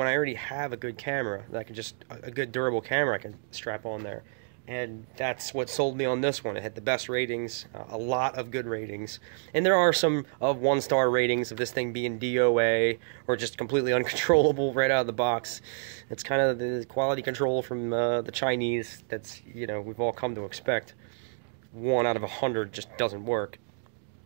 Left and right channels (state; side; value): silent; left; digital silence